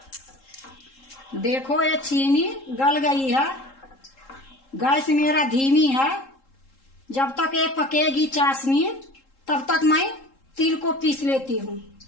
देखो ये चीनी गल गई है। गैस मेरा धीमी है। जब तक ये पकेगी चाशनी तब तक मैं तिल को पीस लेती हूँ।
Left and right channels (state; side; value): late; right; 3.7 ms